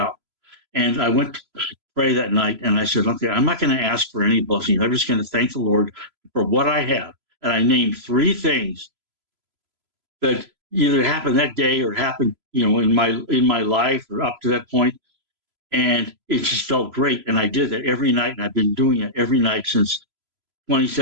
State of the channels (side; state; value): left; late; 3.0 ms